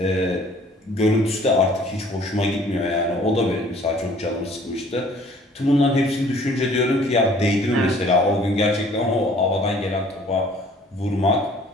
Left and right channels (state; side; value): normal; both; correlation 0.54